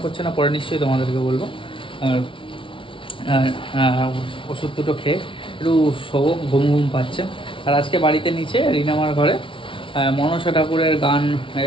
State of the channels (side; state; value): right; late; 0.25 ms